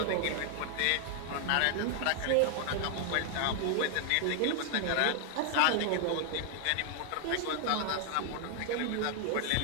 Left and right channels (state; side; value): different; both; correlation 0.00